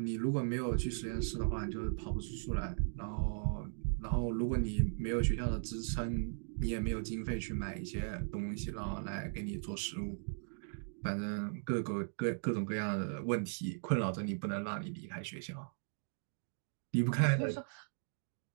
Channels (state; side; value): silent; left; digital silence